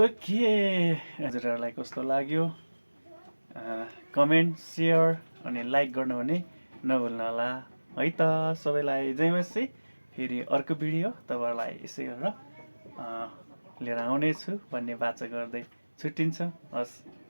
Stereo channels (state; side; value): inverted; both; correlation -1.00